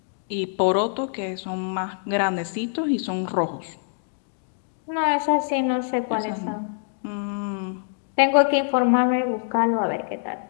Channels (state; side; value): silent; right; digital silence